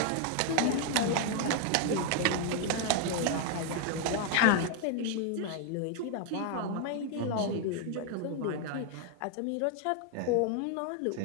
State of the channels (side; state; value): both; different; correlation 0.01